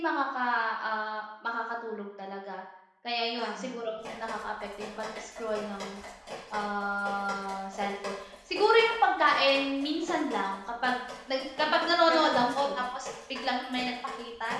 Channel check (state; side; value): identical; both; correlation 1.00